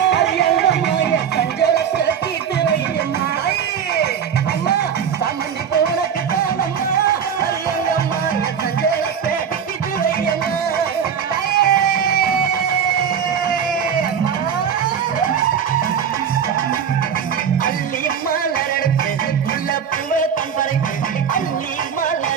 அரியங்கம்மா என் சஞ்சலத்தை தீர்த்து வையம்மா அம்மா சம்மந்தி போனக்கு தானம்மா அரியங்கம்மா என் சஞ்சலத்தை தீர்த்து வையம்மா அள்ளி மலரெடுத்து உள்ள பூவை தம்பரைக்கு அள்ளி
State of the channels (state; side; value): quieter; left; 7.7 dB